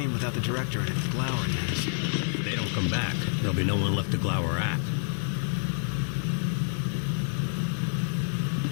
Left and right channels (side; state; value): right; silent; digital silence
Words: without the director and it glowering at us. If they don't come back, there'll be no one left to glower at.